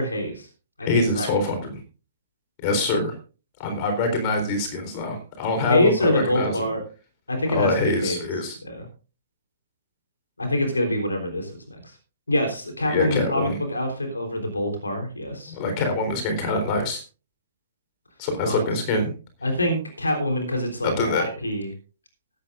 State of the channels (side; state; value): both; inverted; correlation -0.55